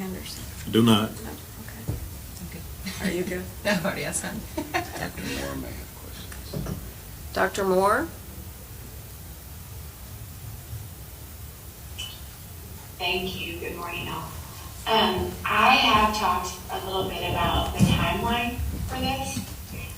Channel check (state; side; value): identical; both; correlation 1.00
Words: Do not. No, okay. Are you good? No, I've already asked him. Dr. Moore may have questions. Dr. Moore? Thank you. Good morning, all. I have talked a little bit about the timeline for this.